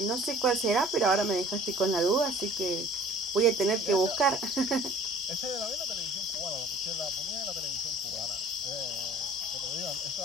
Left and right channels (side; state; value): both; normal; correlation 0.49